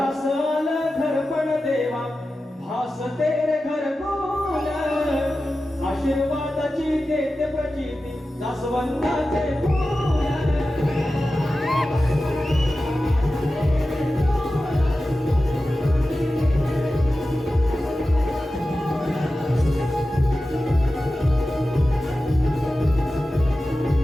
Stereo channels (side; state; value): both; normal; correlation 0.94